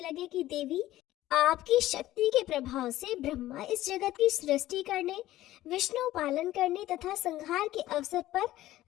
कि देवी, आपकी शक्ति के प्रभाव से ब्रह्मा इस जगत की सृष्टि करने, विष्णु पालन करने तथा संहार के अवसर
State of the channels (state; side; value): quieter; right; 15.1 dB